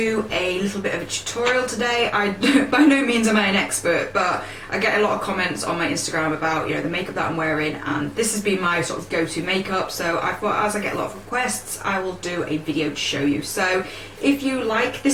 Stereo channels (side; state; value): both; identical; correlation 1.00